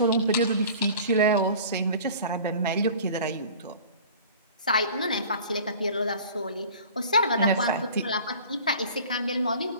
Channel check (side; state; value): both; inverted; correlation -0.43